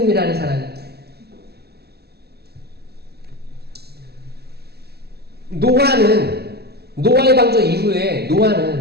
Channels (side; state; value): left; late; 0.47 ms